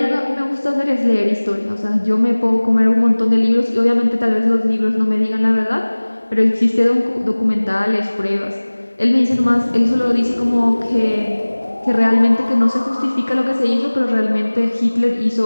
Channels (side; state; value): both; inverted; correlation -1.00